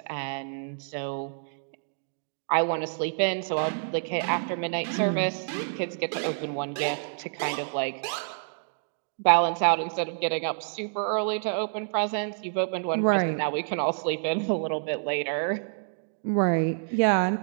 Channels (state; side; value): silent; left; digital silence